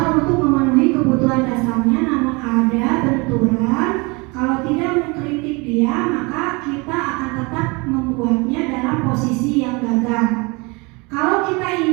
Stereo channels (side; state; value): left; quieter; 27.6 dB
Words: untuk memenuhi kebutuhan dasarnya, namun ada benturan. Kalau tidak mengkritik dia, maka kita akan tetap membuatnya dalam posisi yang gagal. Kalau kita